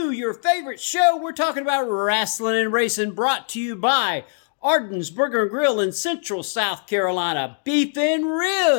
your favorite show. We're talking about wrestling and racing, brought to you by Arden's Burger and Grill in Central South Carolina, Beef and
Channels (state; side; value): silent; right; digital silence